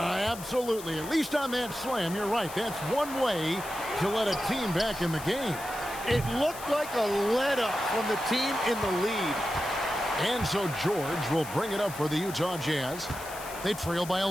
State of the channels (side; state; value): left; noise; hiss, 13 dB below the sound